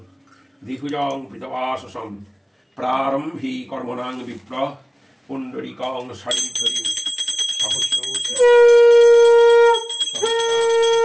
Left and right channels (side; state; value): both; identical; correlation 1.00